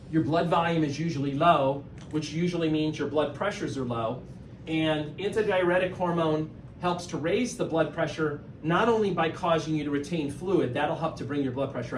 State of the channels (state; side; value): identical; both; correlation 1.00